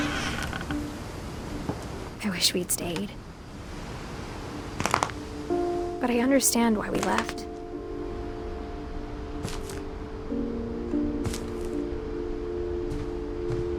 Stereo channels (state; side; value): identical; both; correlation 1.00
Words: I wish we'd stayed. But I understand why we left.